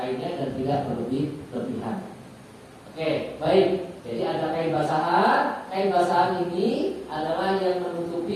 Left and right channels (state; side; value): identical; both; correlation 1.00